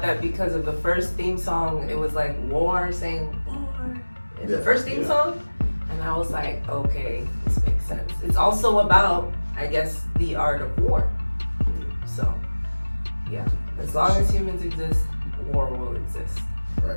that because of the first theme song. It was like war saying war in the first theme song, and I was like, okay, this makes sense. It's also about, I guess, the art of war. So. Yeah, as long as humans exist, war will exist.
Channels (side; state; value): both; inverted; correlation -1.00